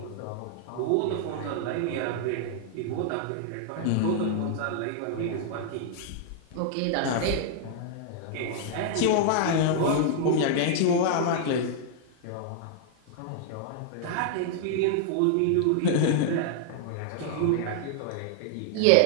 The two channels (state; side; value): different; both; correlation -0.01